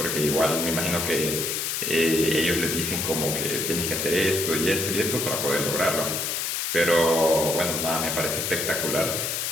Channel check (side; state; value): left; noise; hiss, 1 dB below the sound